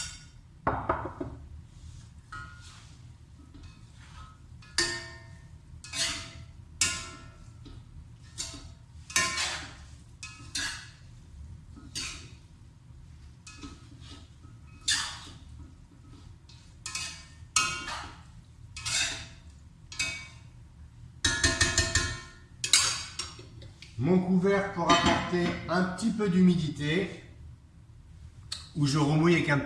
Mon couvercle pour apporter un petit peu d'humidité, où je remouille avec un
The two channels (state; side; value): identical; both; correlation 1.00